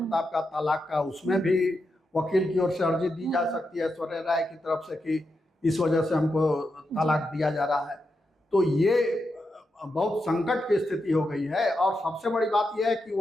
का तलाक का, उसमें भी वकील की ओर से अर्जी दी जा सकती है ऐश्वर्या राय की तरफ से कि इस वजह से हमको तलाक दिया जा रहा है। तो ये बहुत संकट की स्थिति हो गई है। और सबसे बड़ी बात यह है कि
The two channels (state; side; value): normal; both; correlation 0.86